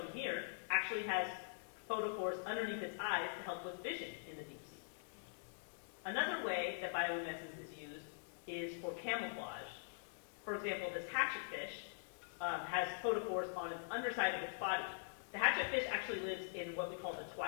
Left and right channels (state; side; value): silent; right; digital silence